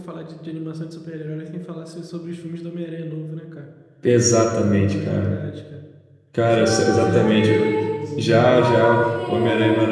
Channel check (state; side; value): identical; both; correlation 1.00